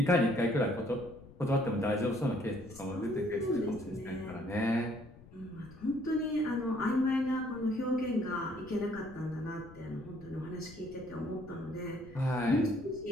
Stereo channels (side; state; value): left; noise; rumble, 20 dB below the sound